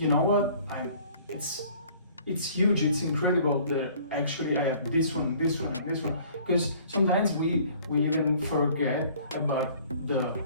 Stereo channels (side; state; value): both; inverted; correlation -0.54